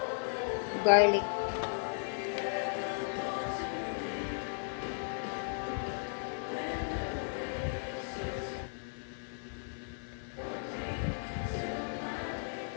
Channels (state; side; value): silent; right; 54 dB below the other